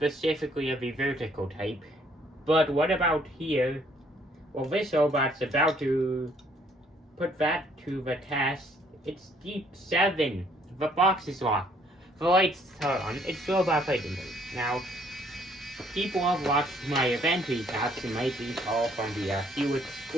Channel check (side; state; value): both; normal; correlation 0.64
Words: of the vertical type. But what about here? Well, this robot's about to put that to the test. It's Deep 7. The box is locked. The lights are on. It's robot fighting mode. Now, people have watched my event recaps and might recall from the Hewitt